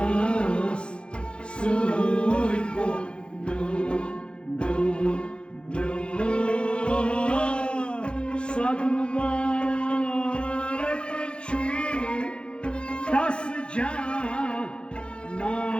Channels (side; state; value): right; late; 0.055 ms